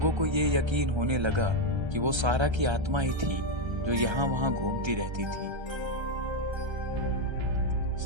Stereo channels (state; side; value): late; left; 1.3 ms